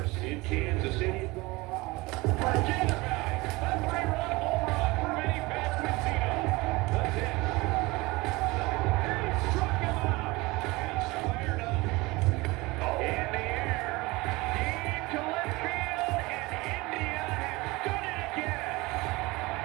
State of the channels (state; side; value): quieter; left; 22.7 dB